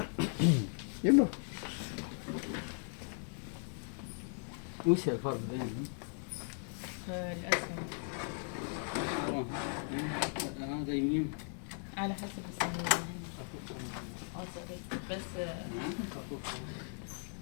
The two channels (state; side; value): silent; right; 53 dB below the other